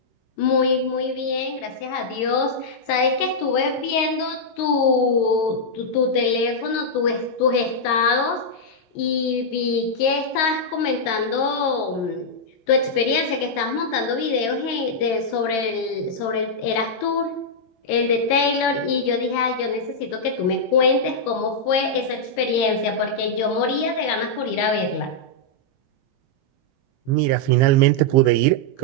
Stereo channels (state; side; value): late; right; 22 ms